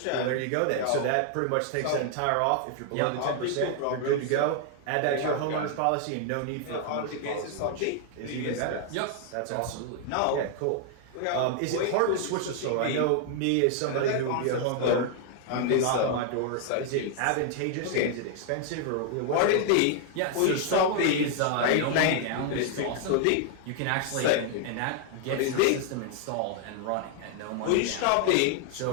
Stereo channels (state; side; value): different; both; correlation 0.00